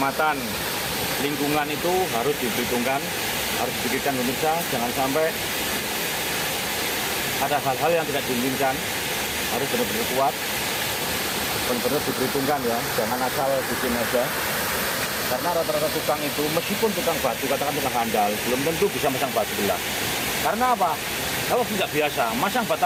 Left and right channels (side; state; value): both; identical; correlation 1.00